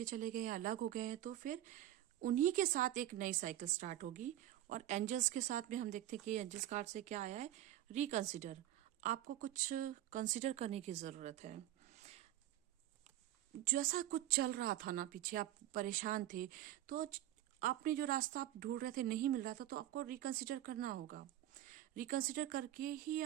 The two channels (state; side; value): quieter; left; 13.4 dB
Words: चले गए या अलग हो गए हैं, तो फिर उन्हीं के साथ एक नई साइकिल स्टार्ट होगी। और एंजल्स के साथ में हम देखते हैं कि एंजल्स कार्ड से क्या आया है, रिकंसिडर। आपको कुछ कंसिडर करने की जरूरत है। जैसा कुछ चल रहा था ना पीछे, आप परेशान थे, तो आपने जो रास्ता आप ढूंढ रहे थे नहीं मिल रहा था, तो आपको रिकंसिडर करना होगा। रिकंसिडर करके ही